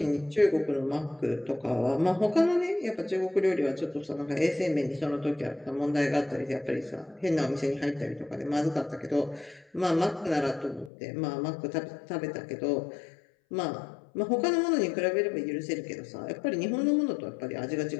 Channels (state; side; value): drops out; right; at 10.9 s